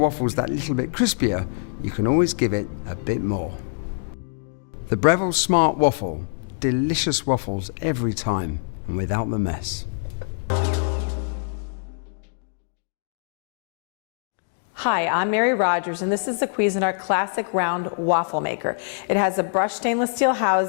that little bit crispier, you can always give it a bit more. The Breville Smart Waffle, delicious waffles every time and without the mess. Hi, I'm Mary Rogers, and this is the Cuisinart Classic Round Waffle Maker. It has a brushed stainless steel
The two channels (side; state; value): right; silent; digital silence